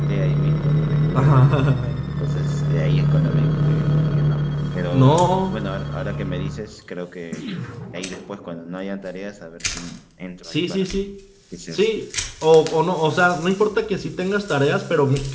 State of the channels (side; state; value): both; identical; correlation 1.00